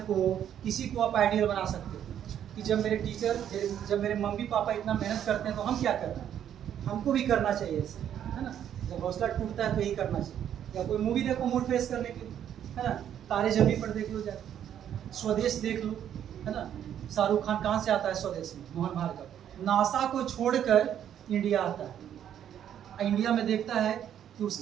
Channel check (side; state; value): left; quieter; 9.9 dB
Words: को, किसी को आप आइडियल बना सकते हो कि जब मेरे टीचर, जब मेरे मम्मी पापा इतना मेहनत करते हैं तो हम क्या करना है, हमको भी करना चाहिए ऐसे, है ना। जब हौसला टूटता है तो यही करना चाहिए। या कोई मूवी देखो मूड फ्रेश करने के लिए, है ना, तारे जमीन पर देख लो, जाके स्वदेश देख लो, है ना। शाहरुख खान कहाँ से आता है स्वदेश में, मोहन भार्गव, नासा को छोड़कर इंडिया आता है, इंडिया में देखता है कि